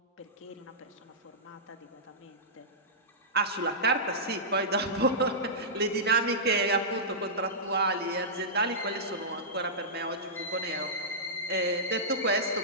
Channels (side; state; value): both; normal; correlation -0.14